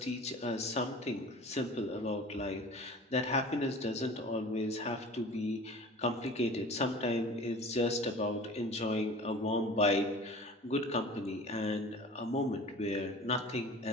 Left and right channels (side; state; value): both; normal; correlation 0.40